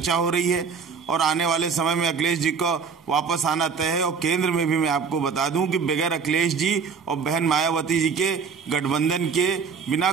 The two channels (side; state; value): left; quieter; 5.7 dB